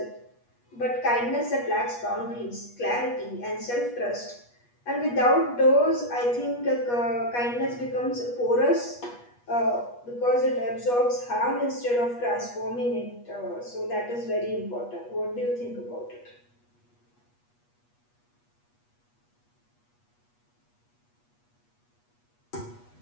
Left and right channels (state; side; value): late; right; 8.3 ms